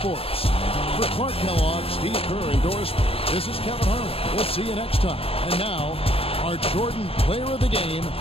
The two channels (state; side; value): late; right; 0.28 ms